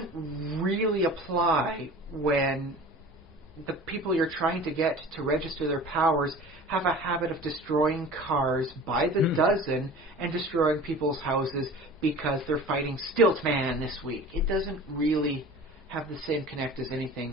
really apply when the people you're trying to get to register their powers have a habit of destroying cars by the dozen and destroying people's houses because they're fighting Stiltman this week. It doesn't really have the same connect as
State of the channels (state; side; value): normal; both; correlation 0.40